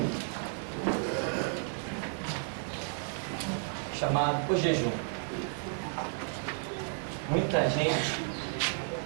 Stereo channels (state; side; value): silent; left; 56 dB below the other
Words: chamado o jejum. Muita gente